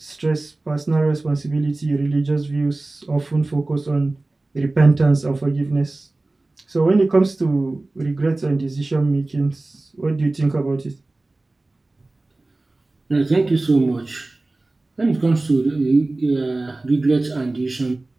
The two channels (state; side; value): quieter; left; 3.0 dB